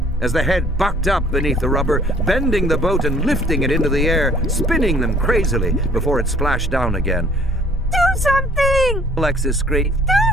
as the head bucked up beneath the rubber, bending the boat and lifting it into the air, spinning them crazily before it splashed down again. Do something! Alexis screamed.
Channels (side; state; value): both; normal; correlation 0.57